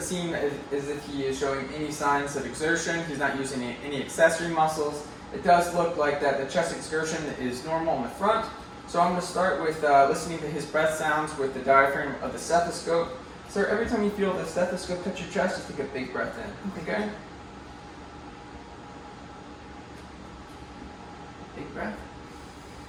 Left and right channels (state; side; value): identical; both; correlation 1.00